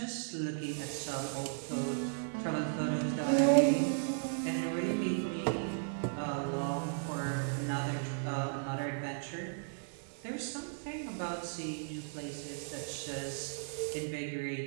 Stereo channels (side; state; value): left; silent; digital silence